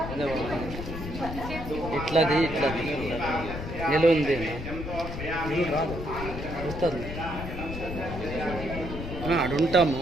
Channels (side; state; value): left; noise; rumble, 7 dB below the sound